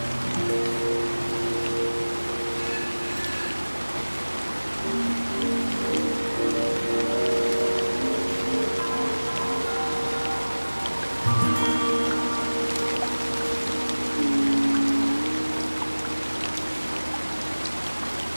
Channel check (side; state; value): both; inverted; correlation -1.00